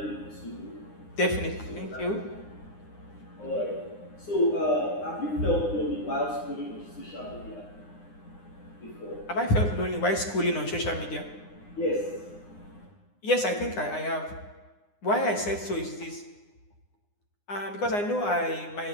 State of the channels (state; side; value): late; right; 9.8 ms